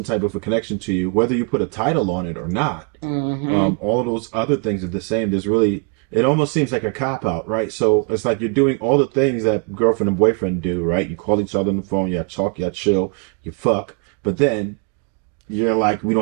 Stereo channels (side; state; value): left; quieter; 37.5 dB